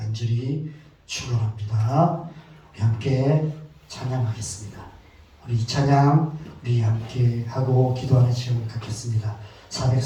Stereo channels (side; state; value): both; identical; correlation 1.00